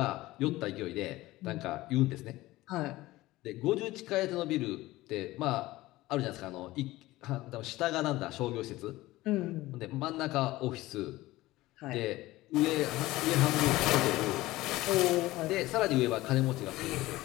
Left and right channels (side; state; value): right; quieter; 18.0 dB